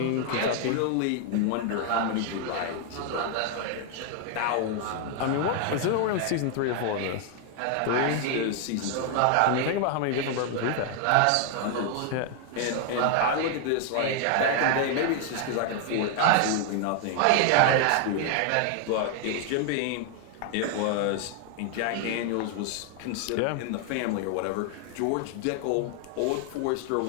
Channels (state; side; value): different; both; correlation 0.00